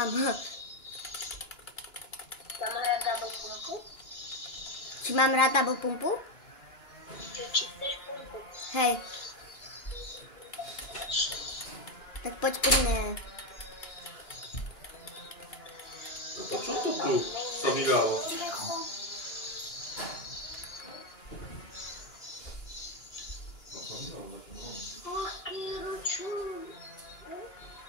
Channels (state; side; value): late; right; 2.9 ms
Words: Mám hrať double pumpu? Či mám rád double pumpu? Či chceš pumpu? Hej. Tak poď pri mne. To čo to tu sa vydalo?